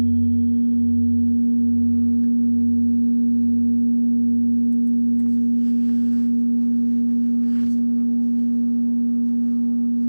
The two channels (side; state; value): both; inverted; correlation -1.00